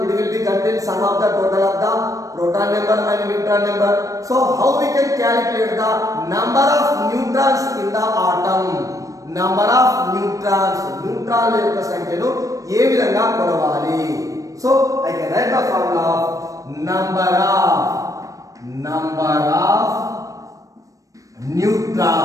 it will be contain sum of the total of the proton number and neutron number. So how we can calculate the number of neutrons in the atom? Number of neutrons, neutron యొక్క సంఖ్యను ఏ విధంగా కొలవాలి? So I can write the formula of number of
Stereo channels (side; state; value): left; late; 0.16 ms